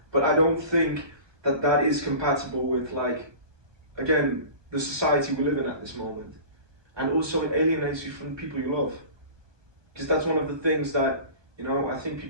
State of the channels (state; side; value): late; left; 1.2 ms